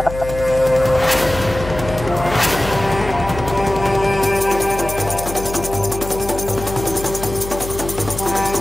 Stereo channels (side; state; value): left; noise; hum, 10 dB below the sound